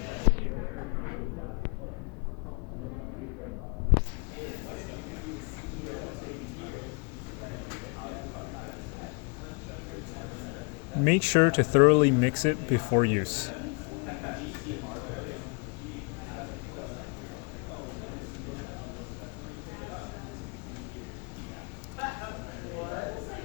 Make sure to thoroughly mix it before use.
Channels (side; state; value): right; quieter; 34.4 dB